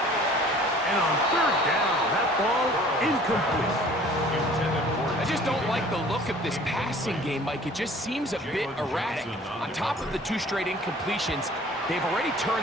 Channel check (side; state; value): both; normal; correlation 0.50